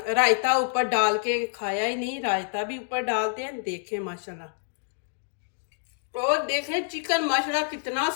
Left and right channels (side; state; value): right; silent; digital silence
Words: ऊपर डाल के खाया ही नहीं, रायता भी ऊपर डालते हैं। देखें माशाल्लाह, और देखें चिकन माशाल्लाह कितना